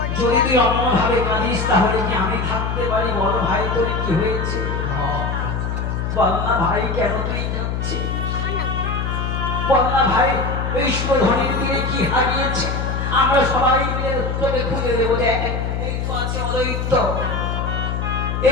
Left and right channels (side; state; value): left; noise; hum, 2 dB below the sound